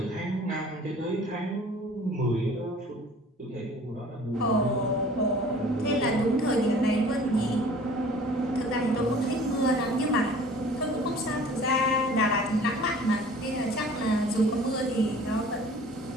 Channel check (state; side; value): normal; both; correlation 0.48